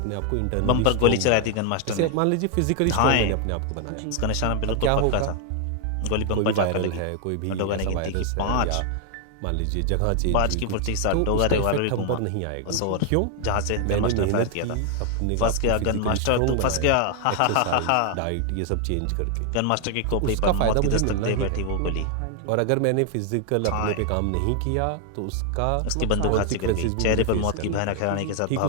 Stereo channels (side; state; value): both; different; correlation 0.00